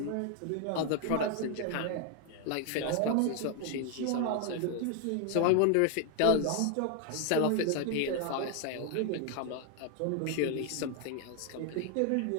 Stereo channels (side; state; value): both; different; correlation 0.01